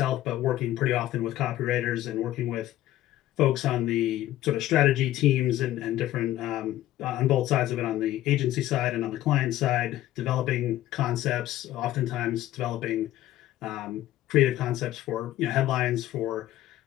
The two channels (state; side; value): quieter; right; 14.3 dB